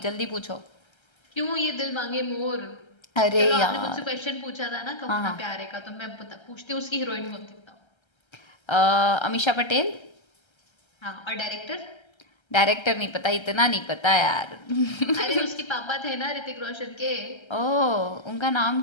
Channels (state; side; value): late; right; 1.3 ms